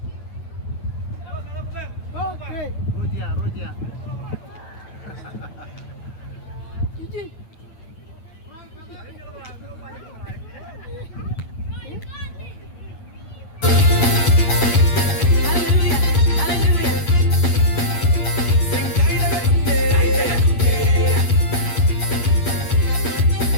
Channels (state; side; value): late; right; 9.0 ms